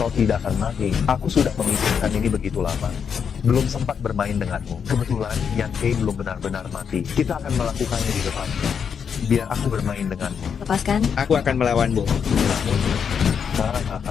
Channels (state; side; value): quieter; right; 7.0 dB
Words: tidak akan mati. Aku sudah memikirkan ini begitu lama. Belum sempat bermain denganmu. Kebetulan Yan Fei belum benar-benar mati. Kita akan melakukannya di depan. Biar aku bermain denganmu. Lepaskan. Aku akan melawanmu.